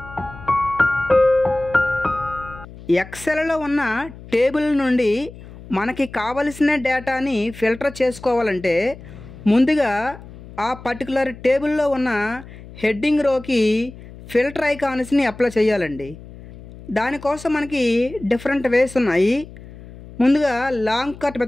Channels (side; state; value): left; noise; hum, 17 dB below the sound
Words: ఎక్సెల్లో ఉన్న టేబుల్ నుండి మనకి కావలసిన డేటాని ఫిల్టర్ చేసుకోవాలంటే ముందుగా ఆ పర్టికులర్ టేబుల్లో ఉన్న హెడ్డింగ్ రోకి ఫిల్టర్ ఐకాన్స్ని అప్లై చేయాలండి. దానికోసం మనకి డిఫరెంట్ వేస్ ఉన్నాయి. ముందుగా లాంగ్ కట్